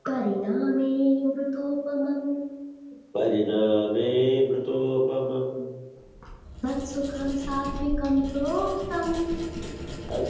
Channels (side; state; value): both; identical; correlation 1.00